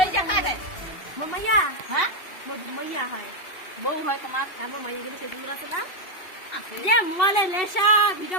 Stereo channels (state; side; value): late; right; 2.7 ms